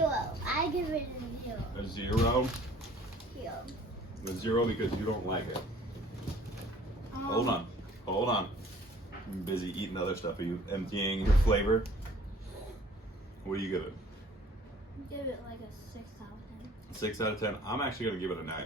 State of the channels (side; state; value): both; normal; correlation 0.53